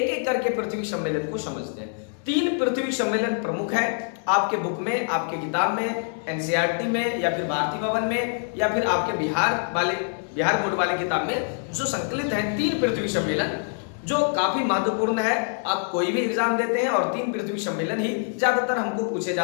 एक करके पृथ्वी सम्मेलन को समझते हैं। 3 पृथ्वी सम्मेलन प्रमुख है आपके बुक में, आपके किताब में, एनसीईआरटी में या फिर भारती भवन में या फिर आपके बिहार बोर्ड वाले किताब में जो संकलित है। 3 पृथ्वी सम्मेलन जो काफी महत्वपूर्ण है। आप कोई भी एग्जाम देते हैं और 3 पृथ्वी सम्मेलन ही ज्यादातर हमको पूछे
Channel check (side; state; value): right; silent; 58 dB below the other